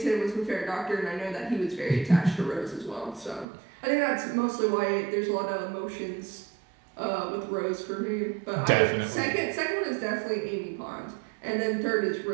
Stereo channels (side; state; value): left; drops out; at 3.5 s